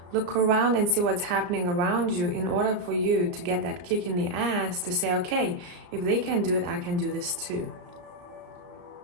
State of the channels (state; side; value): late; left; 34 ms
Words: Look around and see what's happening around you in order for you to get that kick in the ass to say, okay, if they can do it, I can do this too.